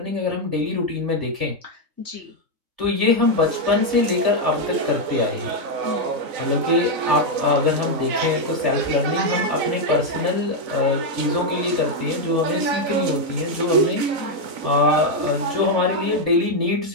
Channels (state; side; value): late; left; 4.0 ms